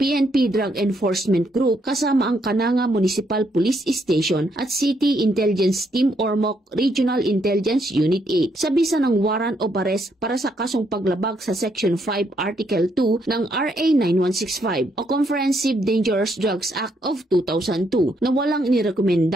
Drug Enforcement Group kasama ang Cananga Municipal Police Station at City Intelligence Team Ormoc Regional Intelligence Unit 8 sa bisa ng warrant of arrest para sa kasong paglabag sa Section 5 Article 2 ng RA 9165 o Comprehensive Dangerous Drugs Act of 2002 na walang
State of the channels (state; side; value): normal; both; correlation 0.74